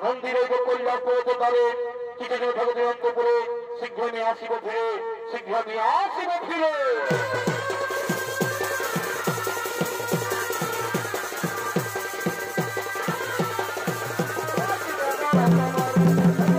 মন্দিরে কল্যাণ পড়তে পারে কিছু জন ঠাকুর অন্ত করে, শীঘ্র নিয়ে আসিব ফিরে, শীঘ্র নিয়ে আসিব ফিরে।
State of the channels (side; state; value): both; identical; correlation 1.00